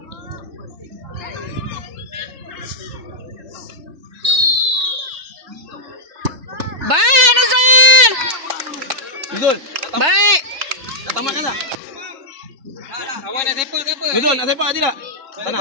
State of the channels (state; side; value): late; left; 3.3 ms